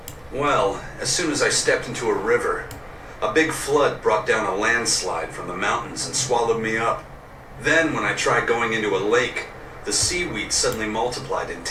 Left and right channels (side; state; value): both; identical; correlation 1.00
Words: Well, as soon as I stepped into a river, a big flood brought down a landslide from the mountains and swallowed me up. Then, when I tried going into a lake, the seaweed suddenly multiplied and